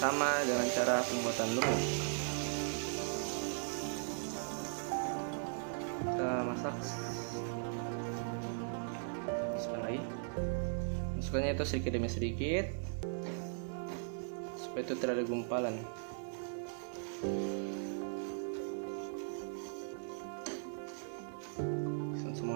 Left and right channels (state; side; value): silent; left; 52 dB below the other